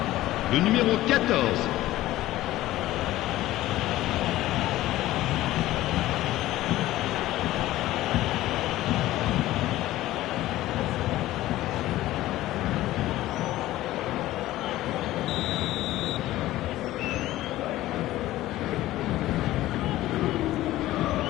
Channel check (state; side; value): quieter; right; 15.7 dB